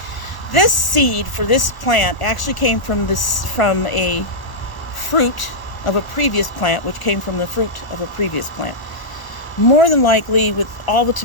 this seed for this plant actually came from a fruit of a previous plant, which came from the fruit of a previous plant. More than likely, with all the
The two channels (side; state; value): right; late; 1.0 ms